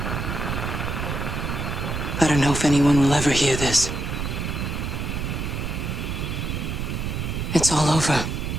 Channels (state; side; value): noise; right; rumble, 3 dB below the sound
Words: I don't know if anyone will ever hear this. It's all over.